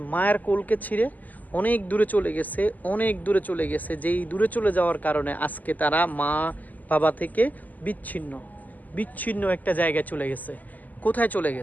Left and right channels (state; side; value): late; right; 0.081 ms